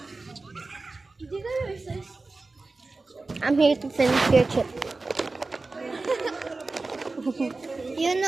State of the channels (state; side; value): quieter; left; 3.5 dB